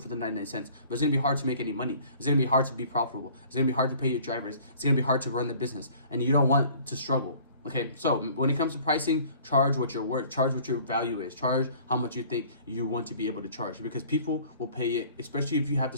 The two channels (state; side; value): inverted; both; correlation -0.51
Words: for the 99 cents, but it's gonna be hard to make any money. It's gonna be hard to be profitable. It's gonna be hard to pay your drivers. It's gonna be hard to run the business, and you don't want to struggle. Okay, so when it comes to pricing, charge what you're worth, charge what your value is, charge how much you think you want to be able to charge, because people will pay it, especially if you have the